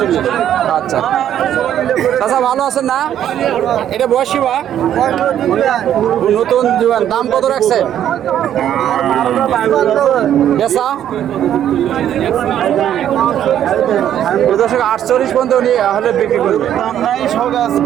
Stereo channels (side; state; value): left; quieter; 10.6 dB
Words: আচ্ছা চাচা ভালো আছেন না? এটা বয়সী বা নতুন জীবন, দাম কত রাখছে? বেচা 48 পর্যন্ত উনি হলে বিক্রি করবে।